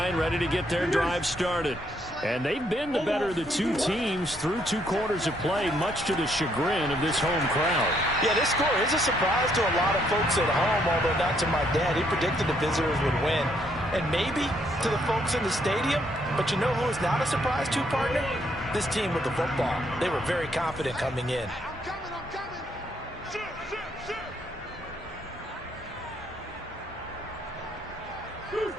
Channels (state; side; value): normal; both; correlation 0.71